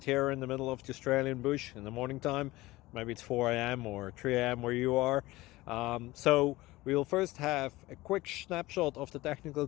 here in the middle of the Australian bush in the morning time. Maybe it's 4 a.m. or 3 a.m. where you are. So we'll first have a quick snapshot of the technical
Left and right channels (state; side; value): quieter; right; 19.3 dB